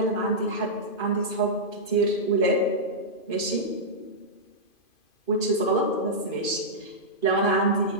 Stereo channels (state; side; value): late; right; 2.5 ms